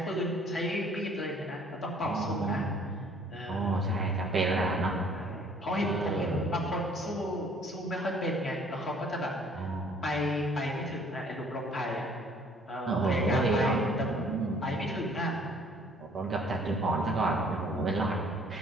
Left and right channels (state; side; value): normal; both; correlation 0.57